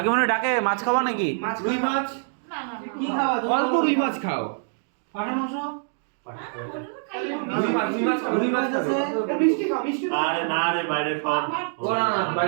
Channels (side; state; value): left; silent; digital silence